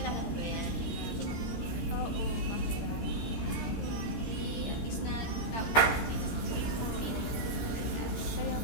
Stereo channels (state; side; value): late; right; 13 ms